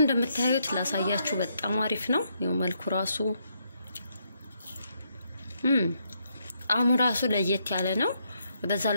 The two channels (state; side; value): inverted; both; correlation -0.76